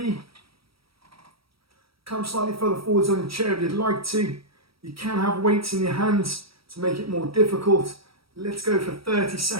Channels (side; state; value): left; late; 0.75 ms